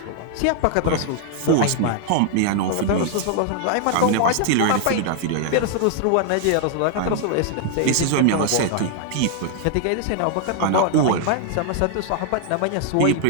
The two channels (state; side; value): different; both; correlation 0.00